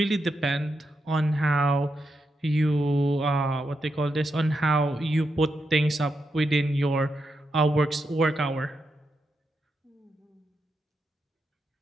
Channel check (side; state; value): both; normal; correlation 0.85